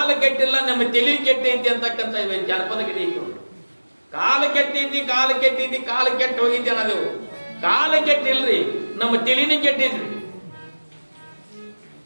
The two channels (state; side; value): inverted; both; correlation -1.00